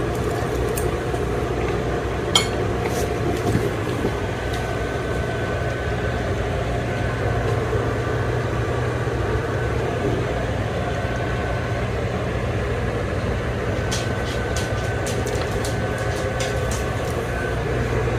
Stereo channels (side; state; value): both; identical; correlation 1.00